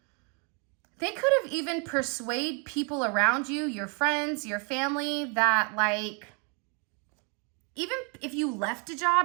They could have even persuaded people around you, your friends, your family, that like, even if you left a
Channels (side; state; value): left; quieter; 35.8 dB